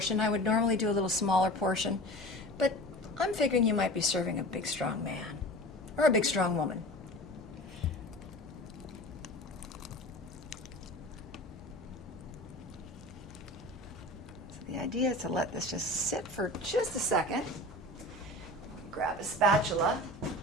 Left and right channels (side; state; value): both; normal; correlation 0.36